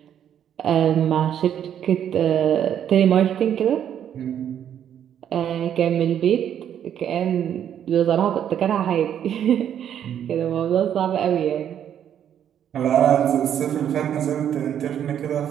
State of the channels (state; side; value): quieter; left; 9.6 dB